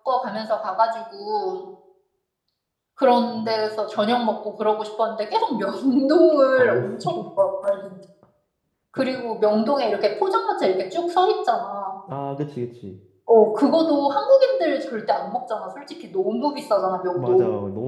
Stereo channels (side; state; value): both; identical; correlation 1.00